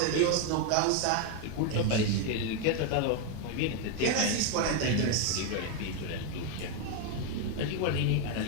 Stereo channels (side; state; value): both; different; correlation 0.01